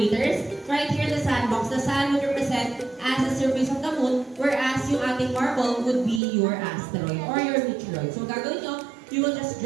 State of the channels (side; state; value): left; drops out; at 6.2 s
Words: Right here, the sandbox. The sand would represent as the surface of the moon, whereas yung ating marble would be your asteroid or your meteoroid. So, gagawin nyo, you will just